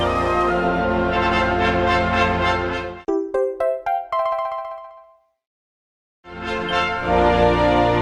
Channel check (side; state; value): both; identical; correlation 1.00